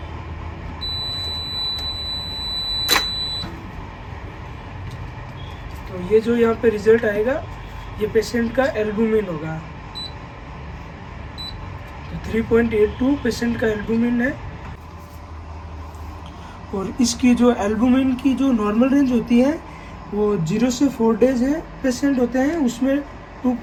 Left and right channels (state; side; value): identical; both; correlation 1.00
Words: तो ये जो यहाँ पे रिजल्ट आएगा ये पेशेंट का एल्बुमिन होगा। तो 3.82 पेशेंट का एल्बुमिन है। और इसकी जो एल्बुमिन की जो नॉर्मल रेंज होती है वो 0 से 4 डेज है पेशेंट होते हैं, उसमें